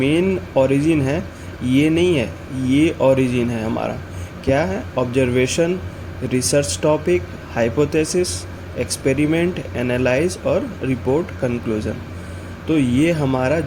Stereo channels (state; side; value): identical; both; correlation 1.00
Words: ओरिजिन है ये नहीं है, ये ओरिजिन है हमारा क्या है, observation, research topic, hypothesis, experiment, analyse और रिपोर्ट कंक्लूजन। तो ये हमारा